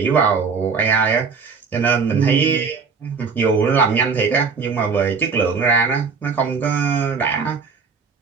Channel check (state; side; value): quieter; left; 5.3 dB